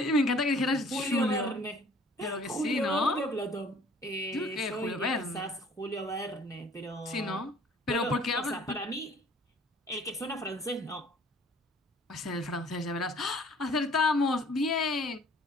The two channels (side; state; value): both; normal; correlation 0.54